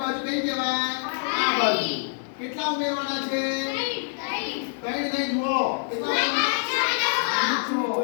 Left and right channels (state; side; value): silent; right; 61 dB below the other